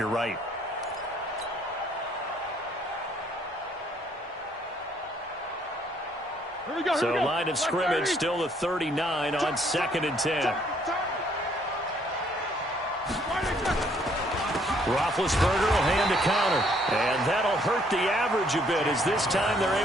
right. So line of scrimmage still the 39 on 2nd and 10. Roethlisberger will hand a counter, and that'll hurt the average a bit as this time they're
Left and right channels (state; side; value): normal; both; correlation 0.65